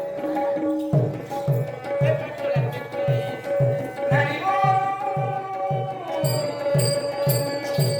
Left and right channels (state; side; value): identical; both; correlation 1.00